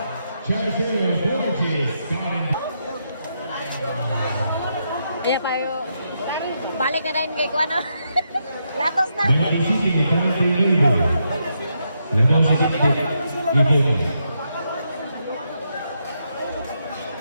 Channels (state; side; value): inverted; both; correlation -0.81